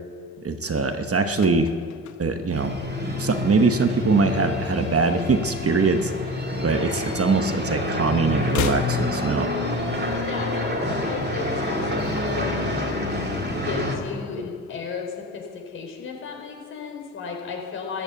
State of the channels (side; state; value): both; normal; correlation 0.32